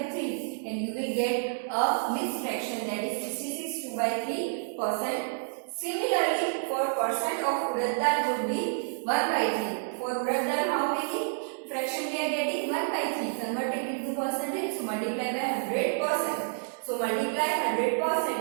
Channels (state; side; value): silent; left; digital silence